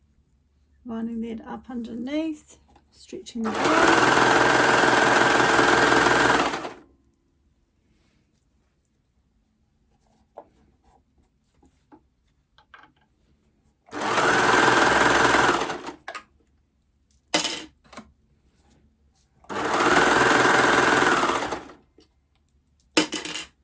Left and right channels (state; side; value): identical; both; correlation 1.00